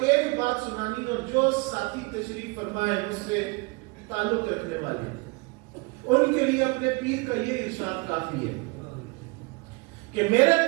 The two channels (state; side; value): quieter; left; 27.4 dB